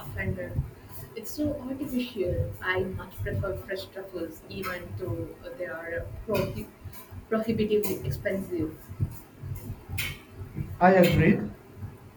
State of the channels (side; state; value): both; identical; correlation 1.00